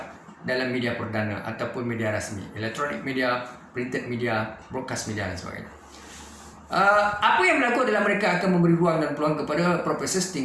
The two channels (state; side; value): identical; both; correlation 1.00